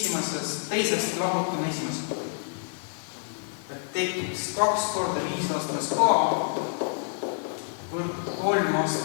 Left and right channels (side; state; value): right; silent; 60 dB below the other